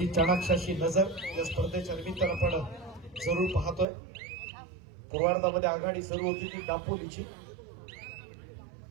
चाणाक्षाची नजर या स्पर्धेच्या निमित्तानं आपण जरूर पाहतोय. पूर्वार्धामध्ये आघाडी सुरू होती ती दापोलीची.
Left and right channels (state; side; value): drops out; left; at 3.9 s